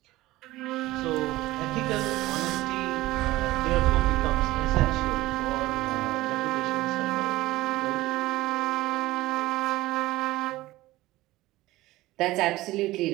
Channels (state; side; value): quieter; left; 17.8 dB